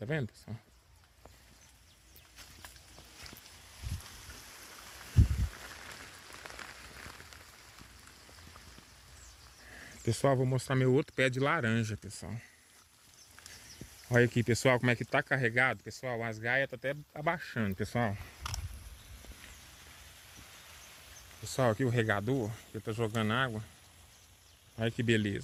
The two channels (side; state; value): both; identical; correlation 1.00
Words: vendo, pessoal? Pessoal, vou mostrar meu outro pé de laranja, pessoal. Olha aqui, pessoal, como é que tá carregado, pessoal. As gaias tá até abaixando, pessoal. Pessoal, aqui o regador, que tá jogando água. Olha que